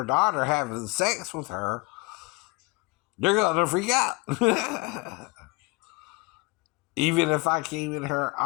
daughter having sex with her, you're going to freak out. Even if I came in her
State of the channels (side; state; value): right; quieter; 26.5 dB